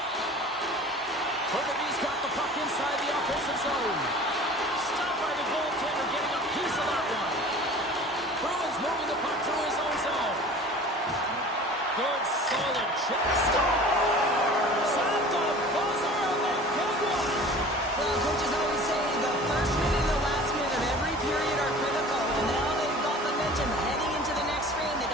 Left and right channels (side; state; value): both; normal; correlation 0.43